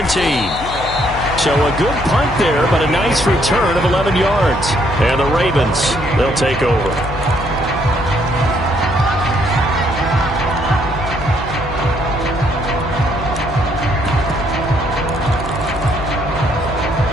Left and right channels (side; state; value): left; noise; hum, 10 dB below the sound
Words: So a good punt there, but a nice return of 11 yards. And the Ravens, they'll take over.